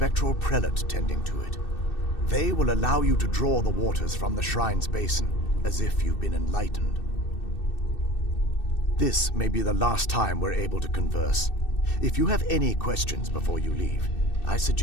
prelate tending to it. They will allow you to draw the waters from the shrine's basin, as if you've been enlightened. This may be the last time we're able to converse. If you have any questions before you leave, I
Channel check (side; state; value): right; late; 2.6 ms